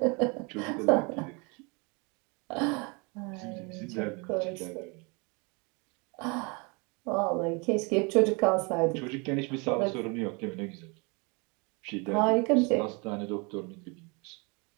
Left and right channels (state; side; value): quieter; left; 30.6 dB